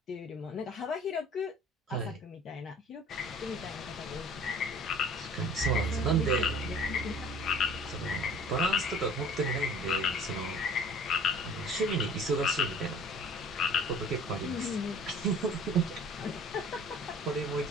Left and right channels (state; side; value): normal; both; correlation 0.48